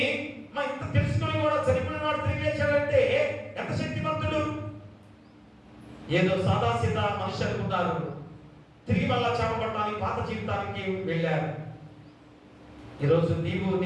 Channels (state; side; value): identical; both; correlation 1.00